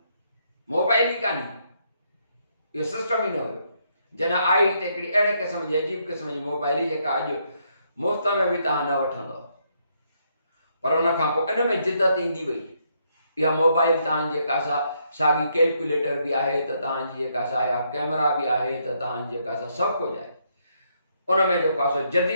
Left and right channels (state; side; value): inverted; both; correlation -0.74